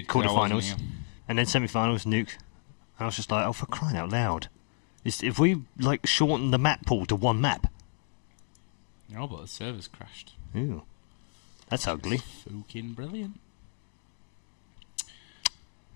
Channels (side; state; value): right; silent; digital silence